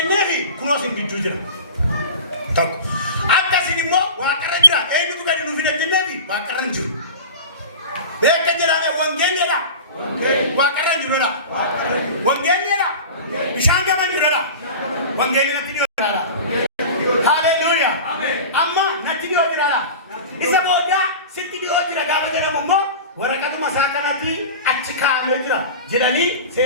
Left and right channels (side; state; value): both; inverted; correlation -0.32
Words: kunosin di jujur. Tak. Akasini mo wakaranjura, ego tu kan nufi jenevi, wakaranju. Beka jerame wangene la wakaran jurala wangene la bishanga man jurala wangene na tidio jurala haleluya amen amma na tidio jurala isa boda sitidio jurala gaba jara mummo warakatu masakanati achika amejira jirani